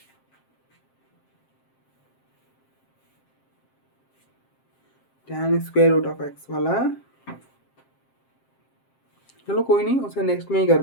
tan square root of x वाला, चलो कोई नहीं, उसे नेक्स्ट में ही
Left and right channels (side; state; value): right; late; 7.5 ms